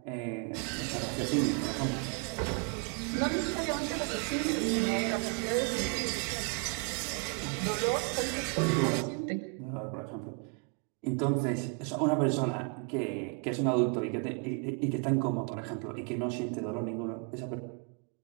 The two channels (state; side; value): quieter; left; 38.2 dB